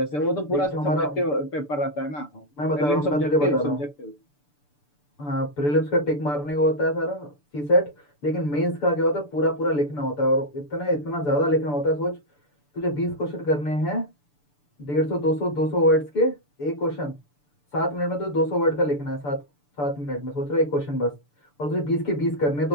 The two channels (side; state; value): right; late; 6.8 ms